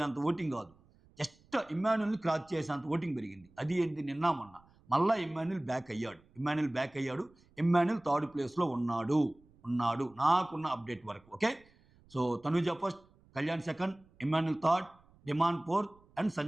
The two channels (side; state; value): right; noise; rumble, 29 dB below the sound